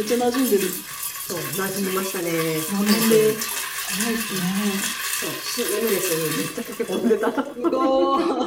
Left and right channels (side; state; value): both; identical; correlation 1.00